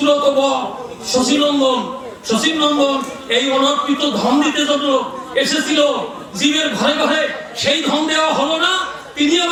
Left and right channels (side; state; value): both; identical; correlation 1.00